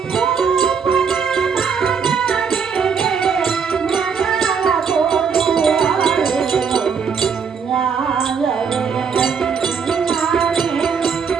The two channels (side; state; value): left; quieter; 6.3 dB